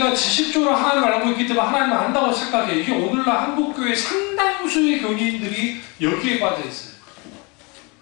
지식적으로 하나님을 알고 있기 때문에 하나님을 안다고 생각해요. 이게 오늘날 한국교회 상당수의 교인들이 여기에 빠져 있어요.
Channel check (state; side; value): quieter; right; 29.4 dB